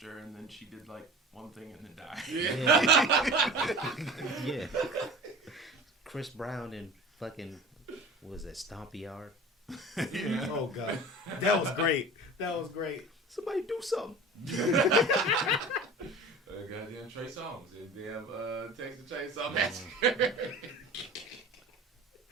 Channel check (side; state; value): both; normal; correlation 0.38